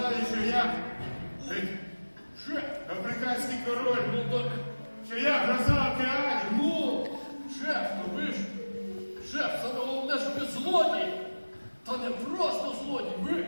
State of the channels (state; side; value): inverted; both; correlation -1.00